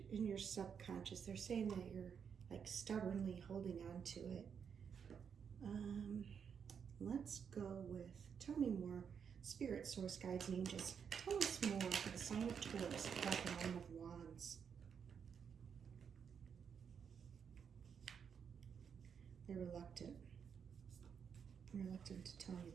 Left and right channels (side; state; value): left; quieter; 7.1 dB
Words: in your subconscious? They're saying that you're like stubbornly holding on to it. Let's go with, tell me more. Spirit, source, guides, and angels. Tell us more for the sign of Taurus, about the Nine of Wands. They're reluctant. Reluctant to tell you.